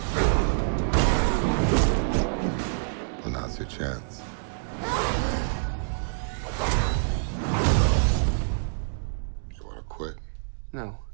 Well, now's your chance. You want to quit? No,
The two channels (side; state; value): left; silent; digital silence